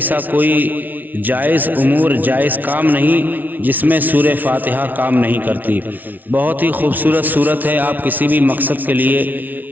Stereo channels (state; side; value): late; left; 0.081 ms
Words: کوئی جائز امور، جائز کام نہیں جس میں سورہ فاتحہ کام نہیں کرتی۔ بہت ہی خوبصورت سورت ہے، آپ کسی بھی مقصد کے